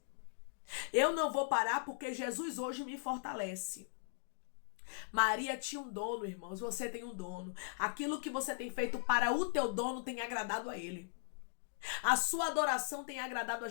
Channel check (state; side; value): silent; right; digital silence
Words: Eu não vou parar, porque Jesus hoje me fortalece. Maria tinha um dono, irmãos. Você tem um dono. Aquilo que você tem feito para o teu dono tem agradado a ele. A sua adoração tem agradado a